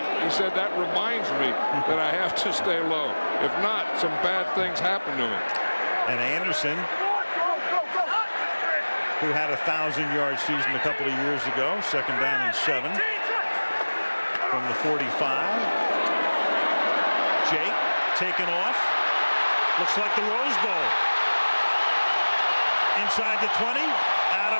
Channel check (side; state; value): both; inverted; correlation -1.00